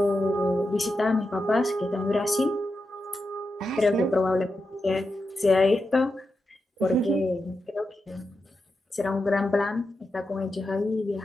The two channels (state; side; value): normal; both; correlation 0.88